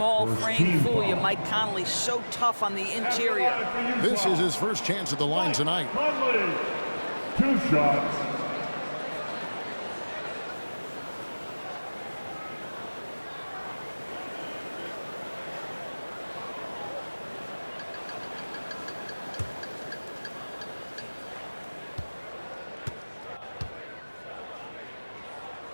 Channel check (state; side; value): inverted; both; correlation -1.00